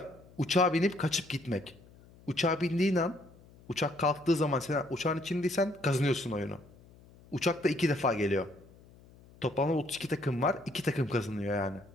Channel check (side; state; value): left; noise; hum, 24 dB below the sound